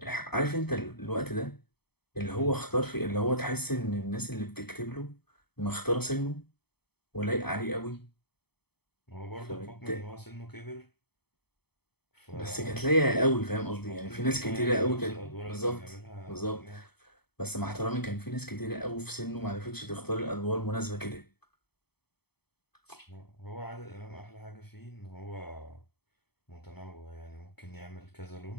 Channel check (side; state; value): right; late; 0.97 ms